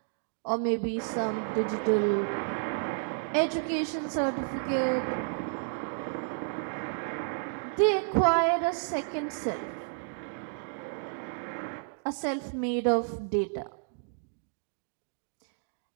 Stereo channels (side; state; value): left; silent; digital silence